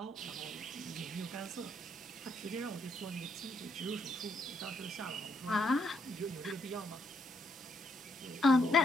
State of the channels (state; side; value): normal; both; correlation 0.74